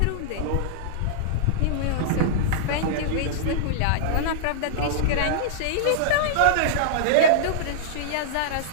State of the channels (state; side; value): different; both; correlation -0.02